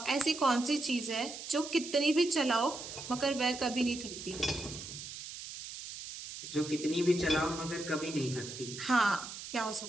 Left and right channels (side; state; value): right; noise; hiss, 10 dB below the sound